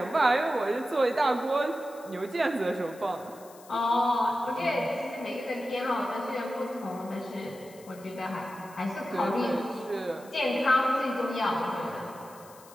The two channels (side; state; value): left; noise; hiss, 23 dB below the sound